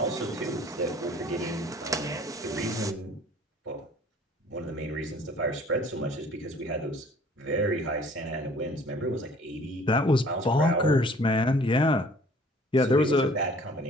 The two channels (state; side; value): normal; both; correlation 0.53